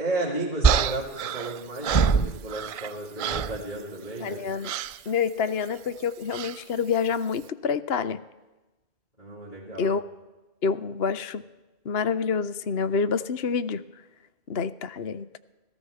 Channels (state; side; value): late; right; 1.7 ms